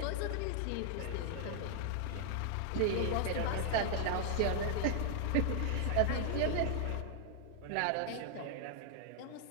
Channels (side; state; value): both; different; correlation 0.00